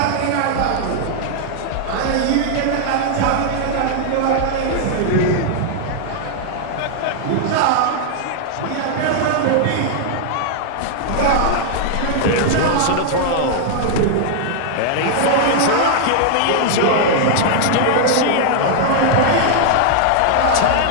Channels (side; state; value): both; different; correlation 0.00